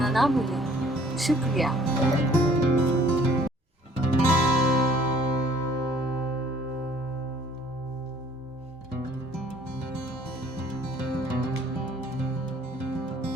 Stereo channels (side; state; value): both; normal; correlation 0.56